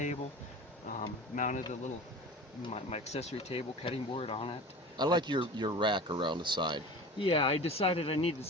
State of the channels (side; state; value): both; normal; correlation 0.36